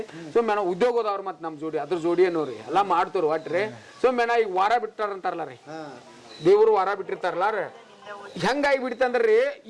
ಸುಮ್ಮನೆ ನಾವು ಉದ್ಯೋಗದವ್ರು ಮತ್ತು ನಮ್ಮ ಜೋಡಿ ಅದ್ರ ಜೋಡಿ ಏನೋರಿ ಎಲ್ಲ ಮಾಡ್ತವ್ರಿ ಒಟ್ರಿ. ಸುಮ್ಮನೆ ಈಗ ವಾರ ಬಿಟ್ಟಾರಂತಾರಲ್ಲ ರೀ, ದೇವ್ರು ವಾರ ಬಿಟ್ಟಿರ್ತಾರಲ್ಲ ರೀ. ಹೆಂಗಾಗಿ ಬಿಡ್ತಂದ್ರಿ,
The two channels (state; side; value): identical; both; correlation 1.00